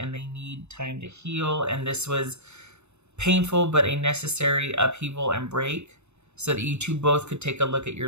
they need time to heal. And this was painful, but a necessary upheaval and break so that you two both could take a look at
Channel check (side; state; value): left; late; 0.81 ms